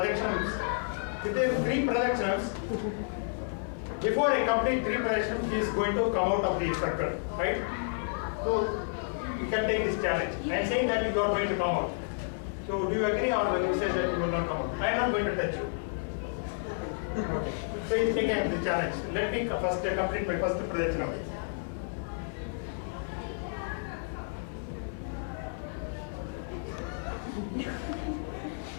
Within 3 projections, before I complete 3 projections, he is going to come out of the circle, right? So you can take this challenge. I am saying that you are going to come out. So do you agree, or will you say that you will not come out? I am not going to touch you. Okay. So you take the challenge. Let me first complete my first projection.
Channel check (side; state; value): right; silent; digital silence